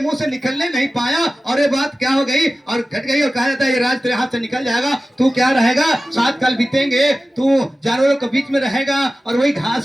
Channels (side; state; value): both; normal; correlation 0.95